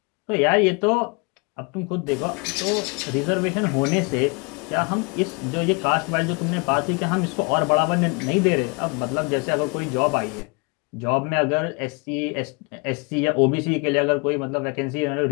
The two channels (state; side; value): quieter; right; 31.5 dB